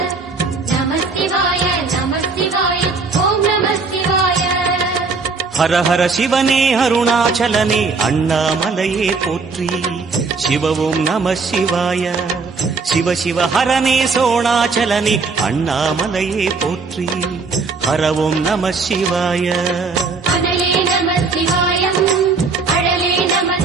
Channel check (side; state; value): left; quieter; 4.4 dB